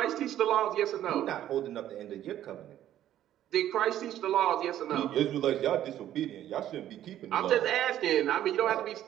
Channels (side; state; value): left; quieter; 12.0 dB